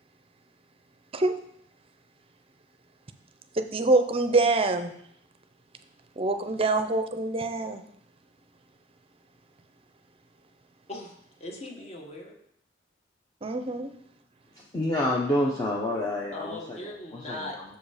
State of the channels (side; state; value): both; normal; correlation 0.38